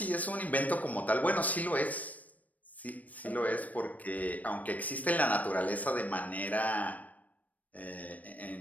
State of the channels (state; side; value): late; right; 0.073 ms